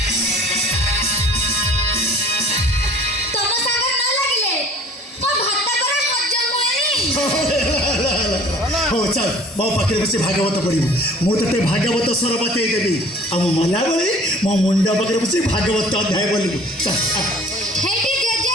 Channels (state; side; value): normal; both; correlation 0.49